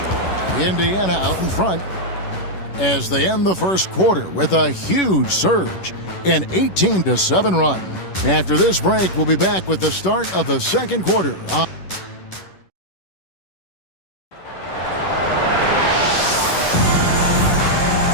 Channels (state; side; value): late; right; 11 ms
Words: Indiana out in front as they end the first quarter with a huge surge. An 18-7 run. After this break, we'll be back with the start of the second quarter.